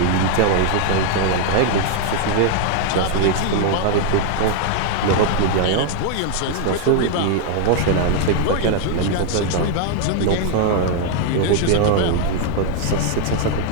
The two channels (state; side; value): different; both; correlation 0.00